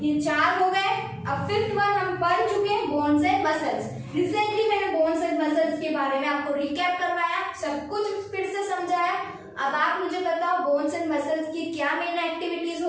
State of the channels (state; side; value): identical; both; correlation 1.00